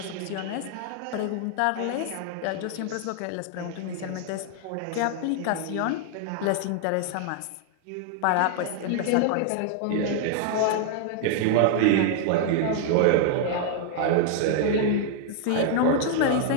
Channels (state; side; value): different; both; correlation 0.00